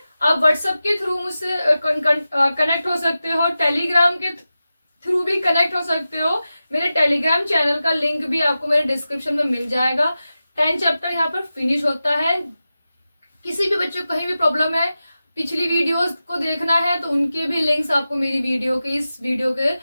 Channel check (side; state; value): both; inverted; correlation -0.93